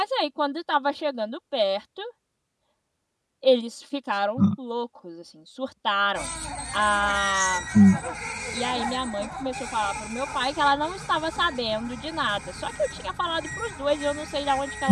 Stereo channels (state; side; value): identical; both; correlation 1.00